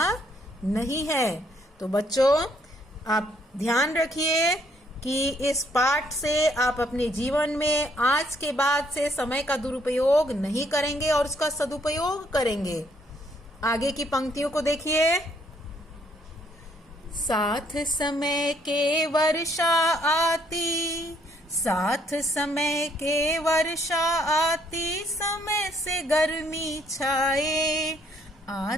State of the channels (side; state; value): both; normal; correlation 0.68